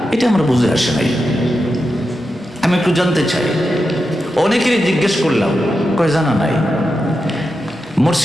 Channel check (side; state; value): both; normal; correlation 0.89